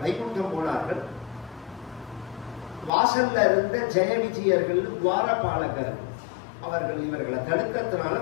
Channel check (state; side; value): drops out; right; at 2.9 s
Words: வைகுண்டம் போனார்கள். வாசல்ல இருந்த ஜெய விஜயர்கள் துவாரபாலகர் அவர்கள் இவர்களை தடுக்கிறதுனால